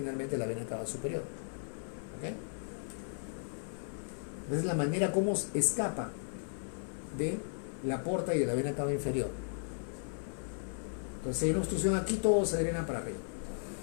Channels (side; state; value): right; silent; 54 dB below the other